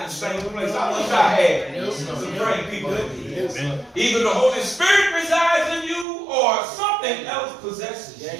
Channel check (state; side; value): drops out; left; at 6.1 s